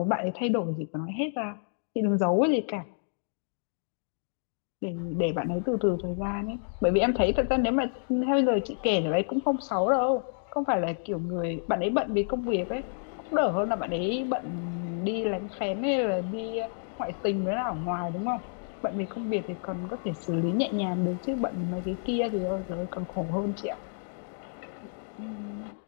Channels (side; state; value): right; silent; digital silence